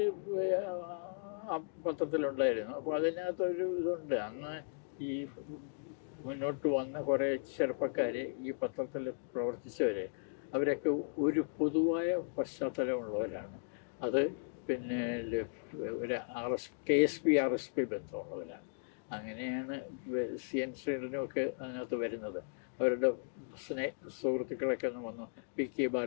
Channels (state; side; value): silent; right; digital silence